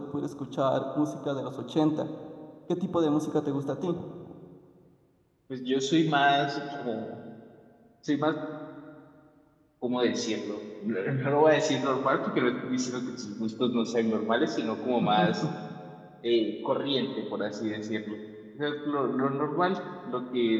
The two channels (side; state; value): both; identical; correlation 1.00